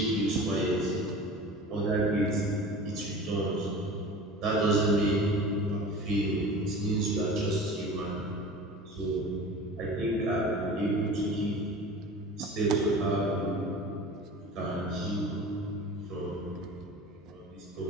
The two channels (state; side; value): normal; both; correlation 0.38